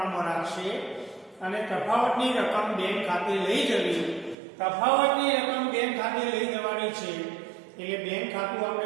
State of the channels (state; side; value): drops out; left; at 4.4 s